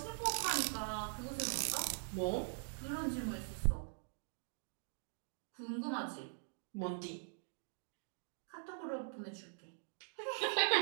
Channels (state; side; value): silent; left; digital silence